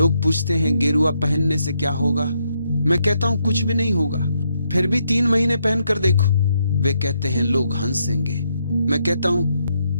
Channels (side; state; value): both; inverted; correlation -0.77